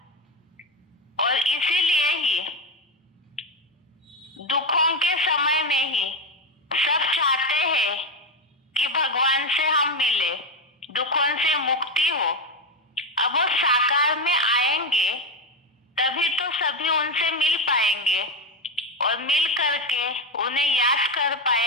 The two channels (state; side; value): normal; both; correlation 0.13